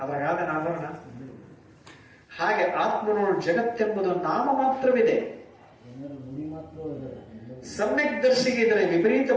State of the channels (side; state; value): both; identical; correlation 1.00